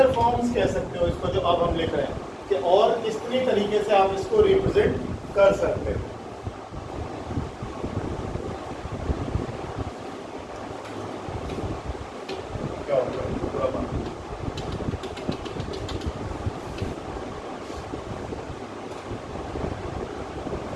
forms कह सकते हो इसको जो अब हम लिख रहे हैं, कि और कितनी तरीके से आप इसको रिप्रेजेंट कर सकते हो। क्या होगा पूरा बात।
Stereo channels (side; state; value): both; identical; correlation 1.00